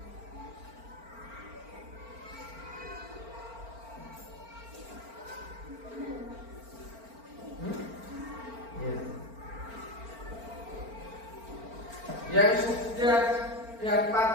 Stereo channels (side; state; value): left; late; 4.4 ms